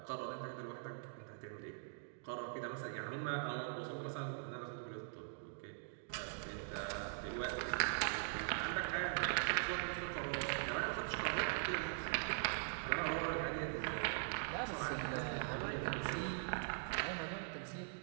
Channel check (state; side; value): silent; left; digital silence